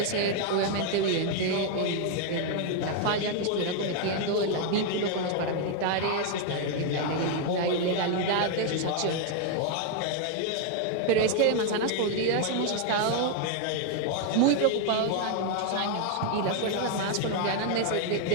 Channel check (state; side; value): different; both; correlation 0.00